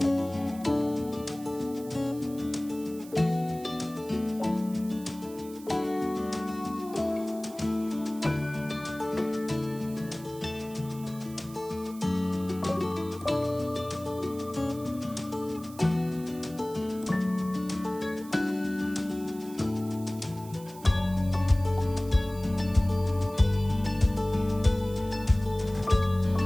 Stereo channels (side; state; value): right; noise; hiss, 20 dB below the sound